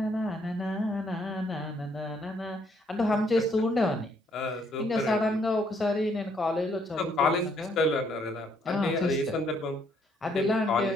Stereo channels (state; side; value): normal; both; correlation 0.69